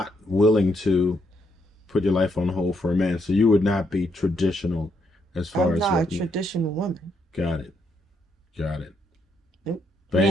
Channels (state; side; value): normal; both; correlation 0.76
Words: willing to put your life on hold for a man, so you would not be traditional as far I'm as not a what you. traditional woman. Got it. Got it. Nope. Yeah,